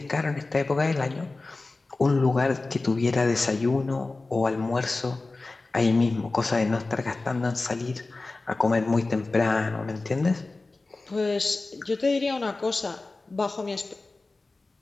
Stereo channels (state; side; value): quieter; right; 3.4 dB